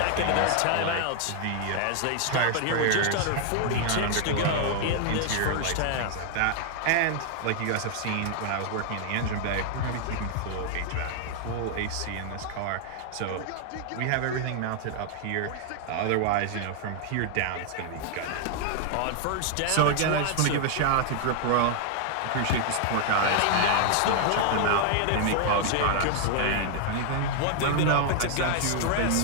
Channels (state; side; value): different; both; correlation 0.00